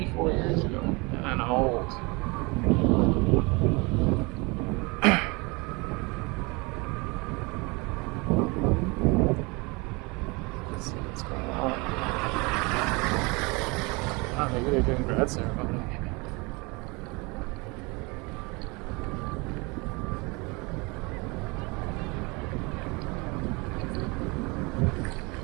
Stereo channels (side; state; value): left; quieter; 27.2 dB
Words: years ago, and I'm old. Let's see what's going on. Oh, maybe they're doing grad ceremony.